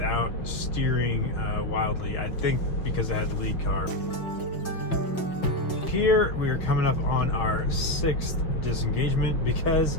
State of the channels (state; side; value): late; right; 5.8 ms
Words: steering wildly. I think because it had the lead car. Here we are coming up on our 6th disengagement because